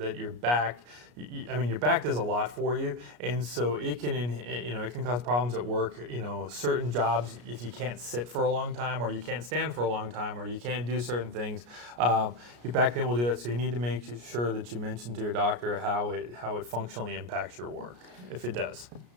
your back. I mean, your back does a lot for you, and so it can, it can cause problems at work. You know, certain jobs, if you can't sit for a long time, or you can't stand for a long time, or you can't do certain things, your back pain will do that. So you need to make sure that you mention to your doctor how it functionally impacts your work, if it does.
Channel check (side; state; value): left; late; 33 ms